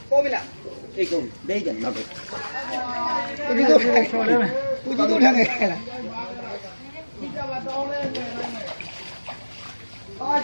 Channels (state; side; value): inverted; both; correlation -1.00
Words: 过不了，这个没人那个，估计都开了，估计都开了。啊，